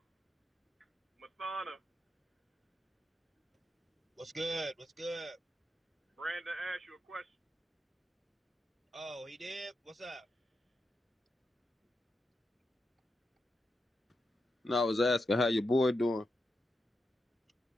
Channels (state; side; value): normal; both; correlation 0.87